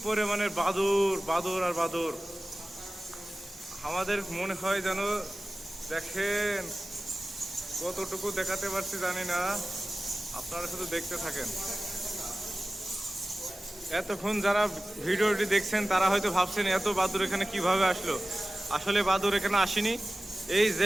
পরিমাণের বাদুর, বাদুর আর বাদুর। আমাদের মনে হয় যেন, দেখেন কতটুকু দেখাতে পারছি জানি না, আপনারা শুধু দেখতে থাকেন। এতক্ষণ যারা ভিডিওটি দেখছেন তারা হয়তো ভাবছেন এত বাদুর এখানে কিভাবে আসলো। আসলে বাদুর এখানে আসেনি। এই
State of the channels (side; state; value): both; normal; correlation 0.96